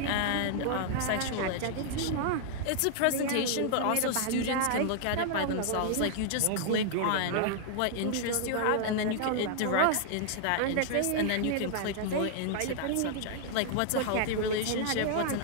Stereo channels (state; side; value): different; both; correlation -0.01